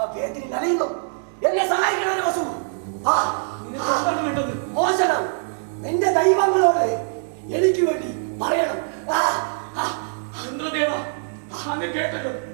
വേദന നനയുന്നു. എന്നെ സഹായിക്കണം വസു. മോശനം നിന്റെ ദൈവങ്ങളോട് എനിക്ക് വേണ്ടി പറയണം. ഇന്ദ്രദേവ, അങ്ങ് കേട്ടല്ലോ,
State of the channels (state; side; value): silent; left; 63 dB below the other